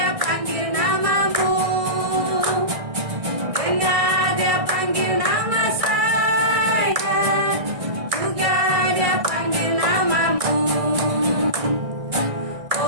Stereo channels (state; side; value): late; left; 1.6 ms